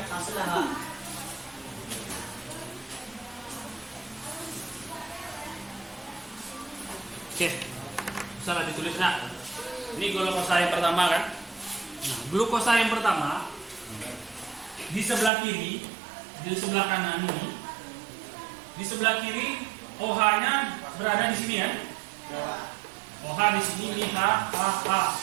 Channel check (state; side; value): drops out; left; at 15.3 s